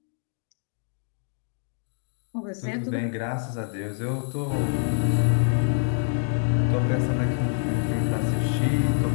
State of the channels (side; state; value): right; silent; 60 dB below the other